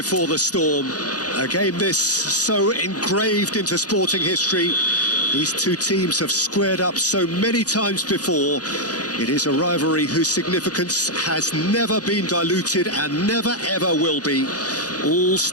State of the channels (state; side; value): late; right; 0.68 ms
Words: the storm. A game this so engraved into sporting history. These two teams have squared up so many times before. It is a rivalry whose significance has never been diluted and never ever will be. All